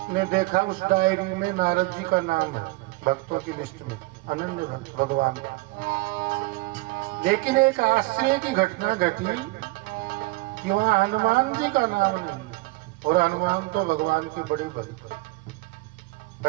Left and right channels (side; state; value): left; quieter; 22.8 dB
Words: ने देखा उस डायरी में नारद जी का नाम है भक्तों की लिस्ट में, अनन्य भक्त भगवान का। लेकिन एक आश्चर्य की घटना घटी कि वहाँ हनुमान जी का नाम नहीं, और हनुमान तो भगवान के बड़े भक्त,